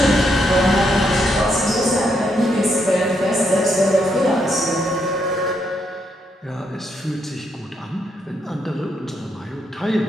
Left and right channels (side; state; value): both; normal; correlation 0.77